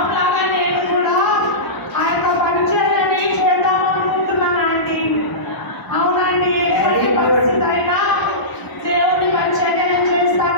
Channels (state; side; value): late; right; 1.0 ms